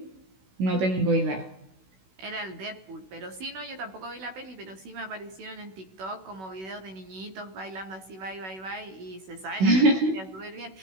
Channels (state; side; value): late; left; 16 ms